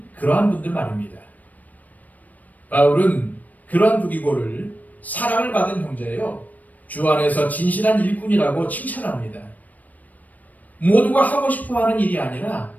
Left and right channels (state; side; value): late; right; 0.078 ms